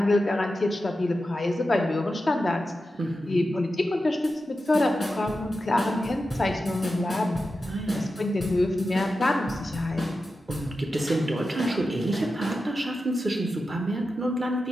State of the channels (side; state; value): both; normal; correlation 0.91